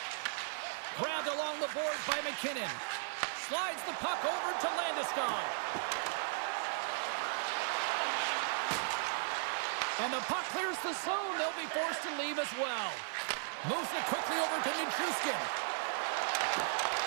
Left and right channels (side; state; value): left; silent; digital silence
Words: Grabbed along the boards by McKinnon. Slides the puck over to Landeskog. And the puck clears the zone. They'll be forced to leave as well. Moves it quickly over to Nichushkin.